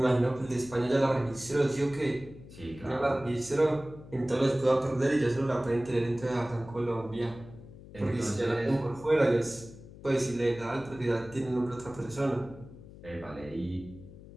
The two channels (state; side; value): noise; left; hum, 18 dB below the sound